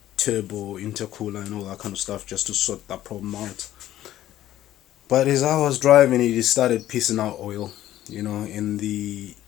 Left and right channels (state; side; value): quieter; right; 13.3 dB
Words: turbo intercooler and all that kind of stuff just to sort that problem out. But as I was driving it, it started pissing out oil, and the